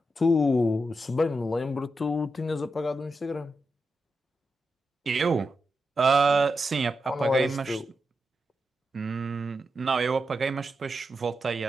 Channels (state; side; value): normal; both; correlation 0.87